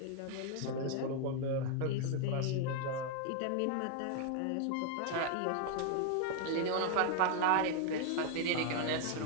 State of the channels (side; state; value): both; different; correlation 0.00